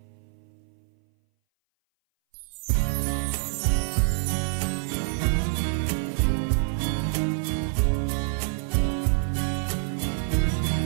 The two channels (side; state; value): left; silent; 59 dB below the other